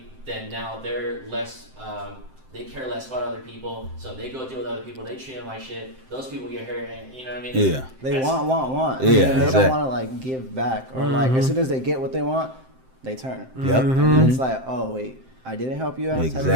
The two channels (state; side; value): late; left; 7.7 ms